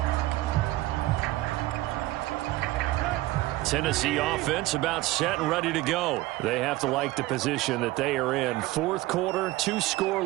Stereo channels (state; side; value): quieter; left; 18.1 dB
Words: Tennessee offense about set and ready to go. They have to like the position that they are in. 4th quarter, 2-score